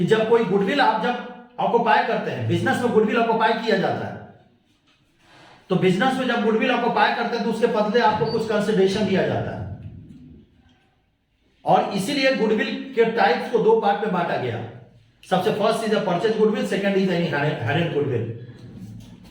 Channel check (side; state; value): both; identical; correlation 1.00